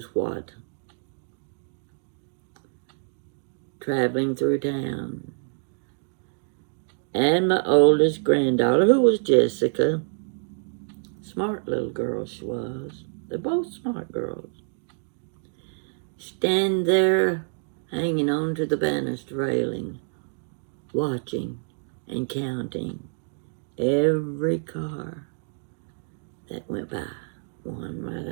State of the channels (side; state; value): left; silent; digital silence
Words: what. Traveling through town. And my oldest granddaughter, who was Jessica, smart little girl she was. They're both smart girls. Stand there hanging on to the banister railing, watching and counting every car that went by, one